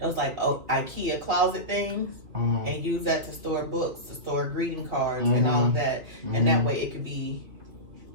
IKEA closet things, and use that to store books, to store greeting cards, and all of that, and that way it could be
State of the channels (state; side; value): late; left; 2.5 ms